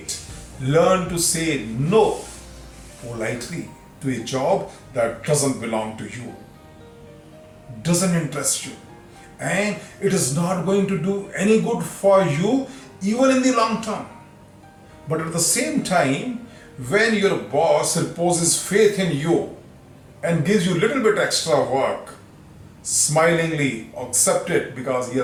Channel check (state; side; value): identical; both; correlation 1.00